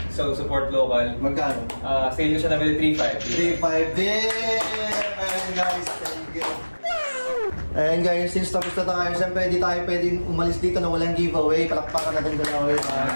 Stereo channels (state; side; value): inverted; both; correlation -1.00